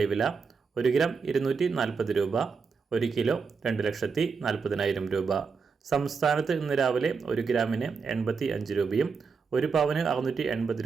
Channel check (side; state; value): left; quieter; 5.3 dB